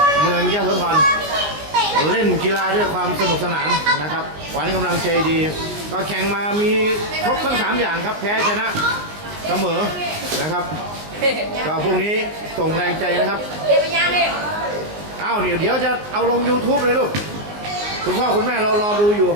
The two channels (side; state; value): left; late; 19 ms